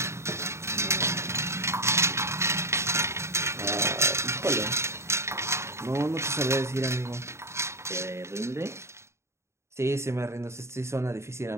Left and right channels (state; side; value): late; left; 0.13 ms